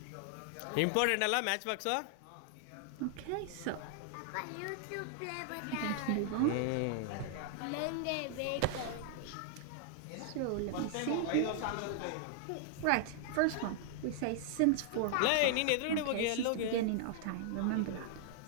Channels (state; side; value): different; both; correlation 0.00